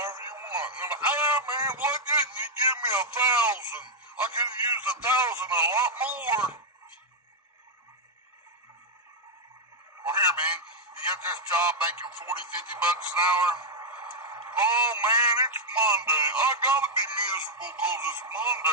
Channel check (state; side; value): normal; both; correlation -0.02